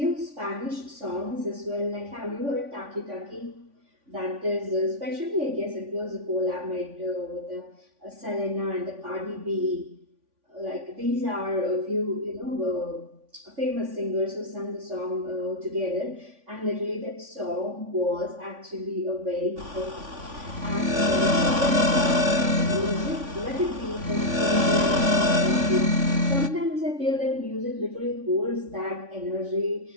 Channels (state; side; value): late; left; 3.5 ms